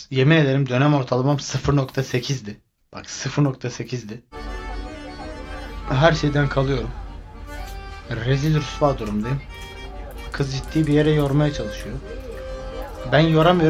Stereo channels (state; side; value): identical; both; correlation 1.00